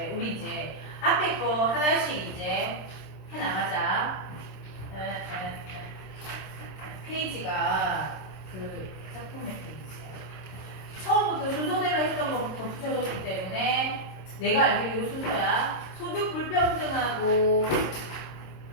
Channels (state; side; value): late; right; 27 ms